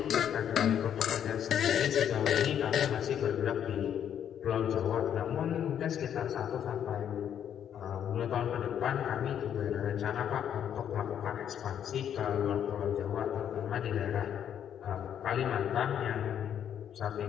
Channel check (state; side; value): quieter; right; 9.3 dB